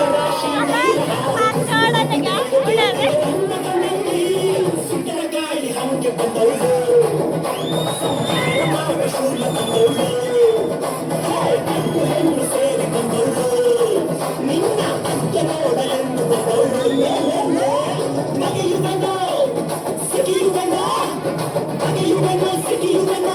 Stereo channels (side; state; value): both; identical; correlation 1.00